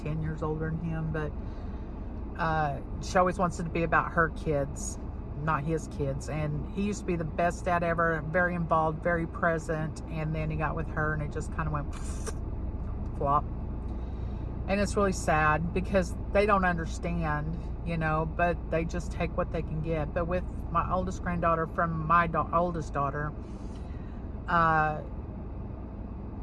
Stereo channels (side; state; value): both; identical; correlation 1.00